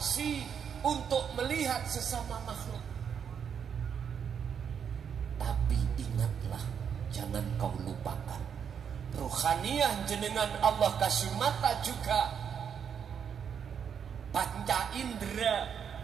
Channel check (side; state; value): left; quieter; 7.6 dB